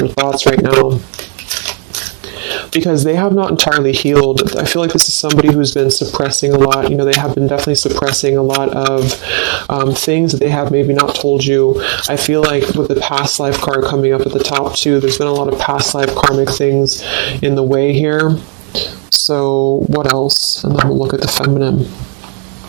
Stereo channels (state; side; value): quieter; left; 39.5 dB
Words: thoughts right now, because they have not entirely healed. I feel like this is somebody who's been suppressing a lot. They have been definitely suppressing a lot of things that they have maybe not told you. I feel like with the past life card coming up at the top too, there's been a lot of past life karmic things in the way here. So what else? And then we'll look at the feminine.